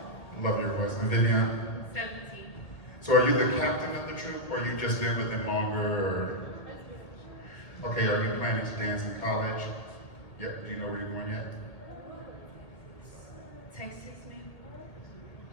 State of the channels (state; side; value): late; right; 1.6 ms